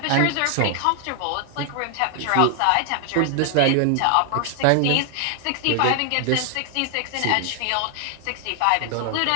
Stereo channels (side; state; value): both; different; correlation 0.00